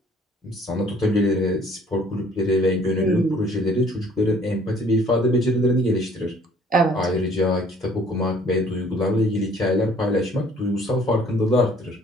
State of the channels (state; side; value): normal; both; correlation 0.57